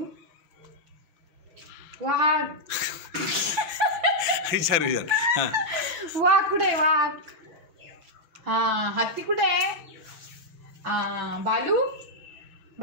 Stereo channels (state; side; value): late; left; 5.9 ms